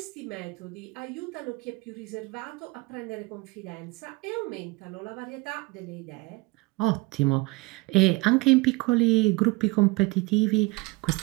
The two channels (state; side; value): quieter; left; 24.2 dB